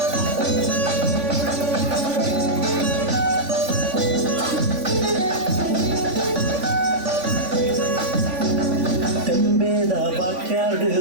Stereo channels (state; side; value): late; left; 3.5 ms